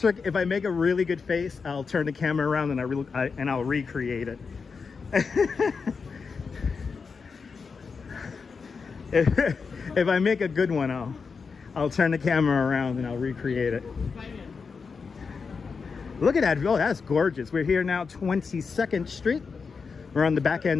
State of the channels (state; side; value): quieter; right; 5.2 dB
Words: If I make a really good face, I'll turn the camera around and I'll recreate it. If I make a good one, I'll turn the camera around and I'll recreate it. Look at that. Oh, that's gorgeous. We're here now, 22nd Street. We're on the back